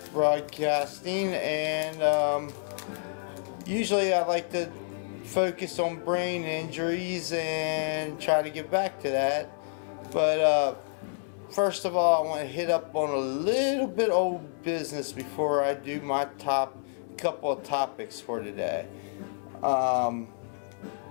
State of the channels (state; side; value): silent; right; digital silence